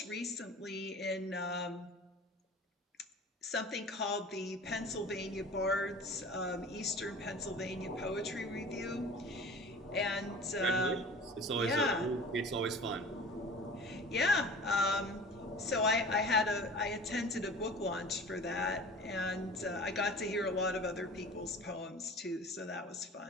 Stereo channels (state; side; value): normal; both; correlation 0.41